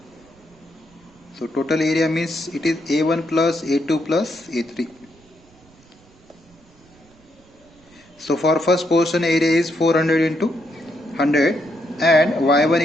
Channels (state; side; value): noise; right; rumble, 29 dB below the sound